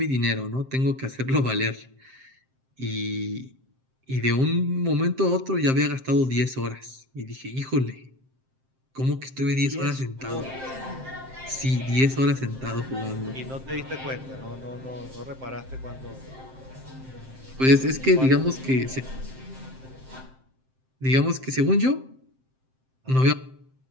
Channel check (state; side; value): late; left; 7.6 ms